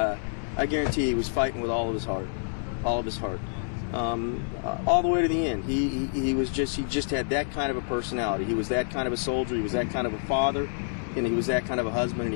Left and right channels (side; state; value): right; silent; 60 dB below the other